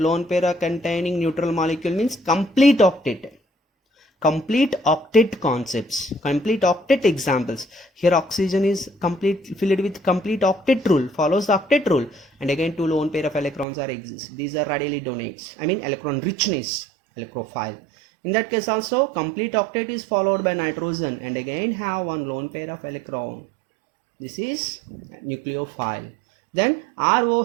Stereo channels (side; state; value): left; drops out; at 13.7 s